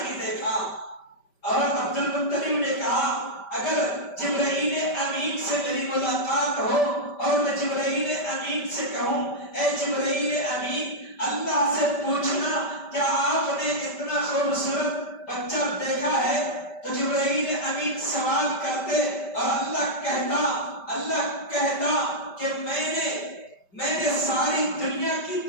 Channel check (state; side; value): late; right; 5.1 ms